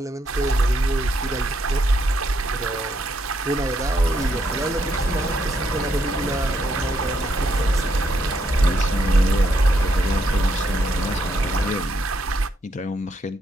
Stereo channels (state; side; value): normal; both; correlation 0.76